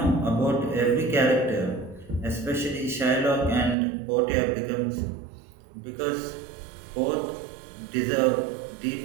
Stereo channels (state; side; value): drops out; left; at 3.8 s